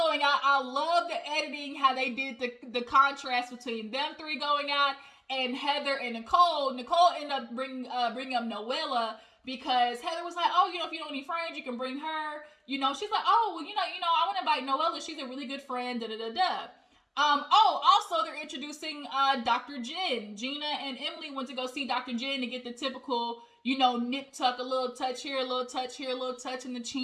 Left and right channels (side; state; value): both; identical; correlation 1.00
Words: out, I love the editing, how they did the contrast between them three going out and Heather and Nicole. Nicole ended up bringing up Noella because Heather was like, oh, if you don't need friends, you can bring her. She's like, oh, well, I want to invite Noella. She's a really good friend, da-da-da-da. Also, they're introducing Dr. Jen. Gina and Emily went to go see Dr. Jen to get the typical, nip tuck, a little touch here, a little touch here, a little touch in the